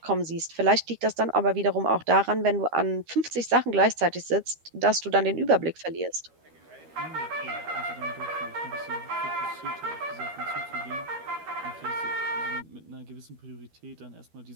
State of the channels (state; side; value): late; left; 13 ms